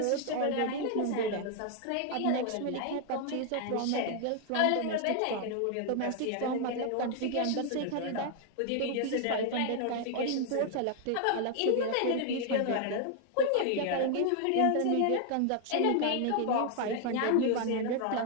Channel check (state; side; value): different; both; correlation 0.00